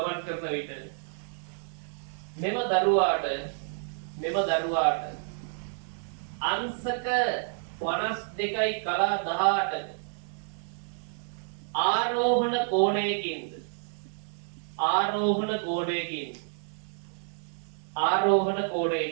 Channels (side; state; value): left; silent; digital silence